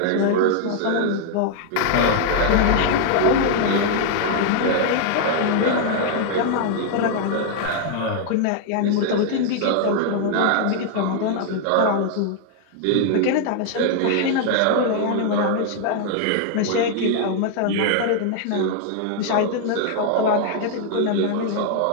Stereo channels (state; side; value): different; both; correlation 0.00